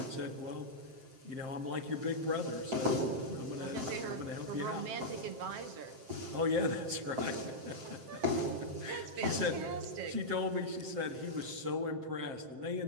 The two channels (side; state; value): left; late; 7.6 ms